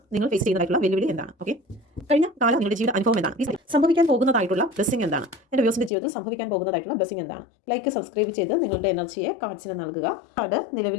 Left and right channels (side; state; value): right; drops out; at 5.9 s